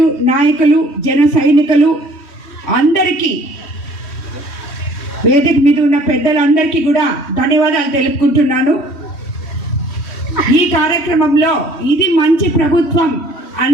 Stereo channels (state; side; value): late; right; 3.1 ms